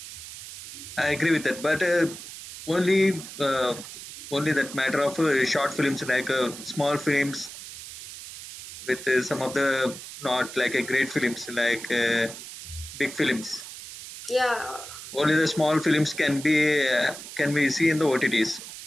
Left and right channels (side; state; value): right; noise; hiss, 12 dB below the sound